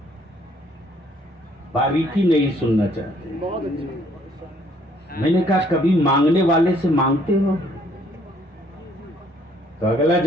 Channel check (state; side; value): normal; both; correlation 0.64